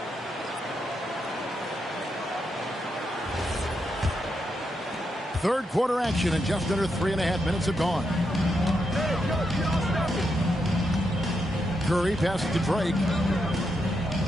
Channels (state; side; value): normal; both; correlation 0.82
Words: Third quarter action and just under 3.5 minutes have gone. Curry passes to Drake.